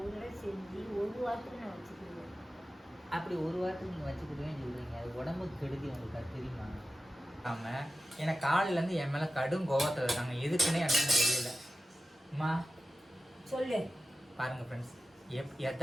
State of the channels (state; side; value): normal; both; correlation 0.95